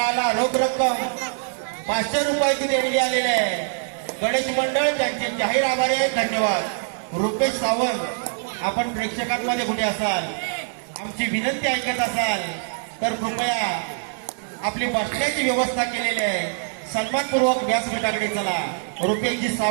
रोख रक्कम 500 रुपयाची देणगी आलेली आहे. गणेश मंडळ त्यांचे जाहीर आभारी आहे. धन्यवाद. रुपेश सावंत, आपण प्रेक्षकांमध्ये कुठे असाल, आमची विनंती ऐकत असाल तर कृपया आपली बसण्याची व्यवस्था केलेली आहे. सन्मानपूर्वक व्यासपीठाकडे चला. रुपेशजी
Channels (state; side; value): silent; left; digital silence